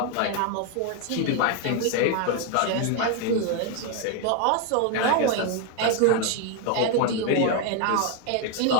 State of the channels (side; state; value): both; different; correlation 0.01